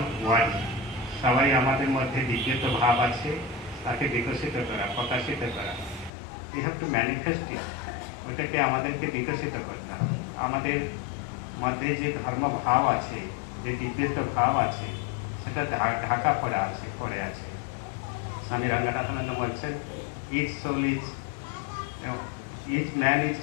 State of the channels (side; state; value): right; drops out; at 6.1 s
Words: one. সবাই আমাদের মধ্যে দিব্যত্ব ভাব আছে, তাকে বিকশিত করা, প্রকাশিত করা। We have to manifest it. ওটাকে আমাদেরকে বিকশিত করতে হবে। আমাদের মধ্যে যে ধর্ম ভাব আছে, যে দিব্যত্ব ভাব আছে, সেটা ঢাকা পড়ে আছে। স্বামী রঙ্গনাথানন্দ বলছেন, each man is